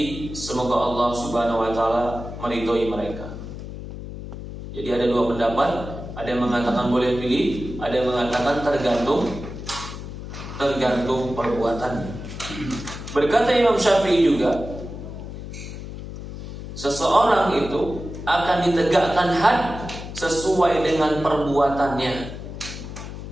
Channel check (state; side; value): noise; left; hum, 10 dB below the sound